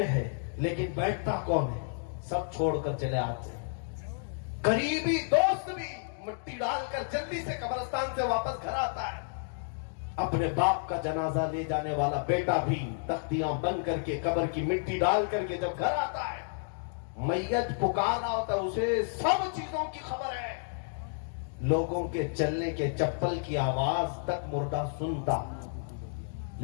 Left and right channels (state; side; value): silent; right; digital silence